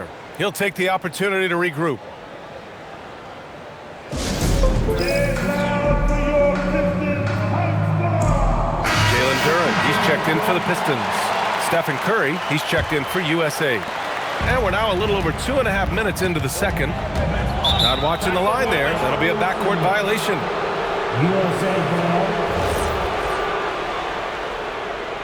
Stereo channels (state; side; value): identical; both; correlation 1.00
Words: He'll take the opportunity to regroup. Jalen Duren, he's checked in for the Pistons. Stephen Curry, he's checked in for USA. And we're now a little over 2.5 minutes into the second. Not watching the line there. That'll be a backcourt violation. USA ball.